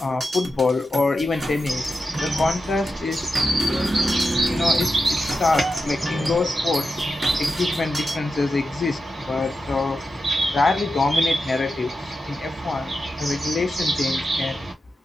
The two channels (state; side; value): normal; both; correlation 0.89